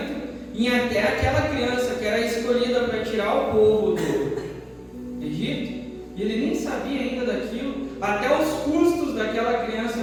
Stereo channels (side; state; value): both; identical; correlation 1.00